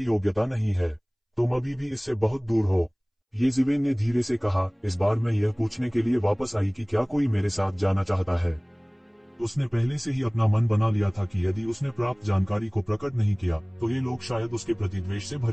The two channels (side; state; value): both; identical; correlation 1.00